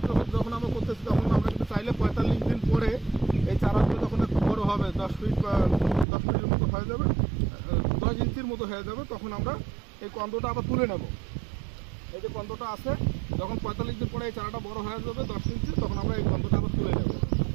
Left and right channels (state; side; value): drops out; left; at 6.1 s